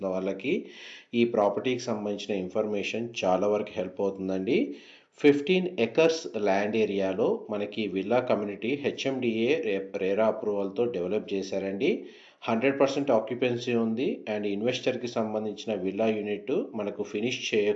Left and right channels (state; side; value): identical; both; correlation 1.00